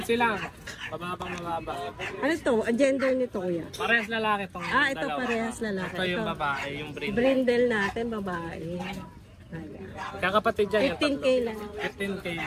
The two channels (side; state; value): both; identical; correlation 1.00